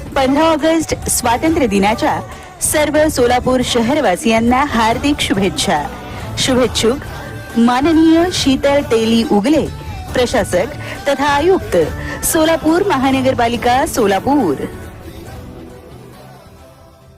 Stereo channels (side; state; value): both; identical; correlation 1.00